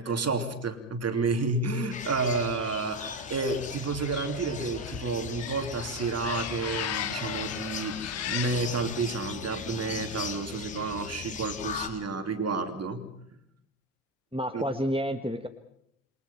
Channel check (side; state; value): both; normal; correlation 0.14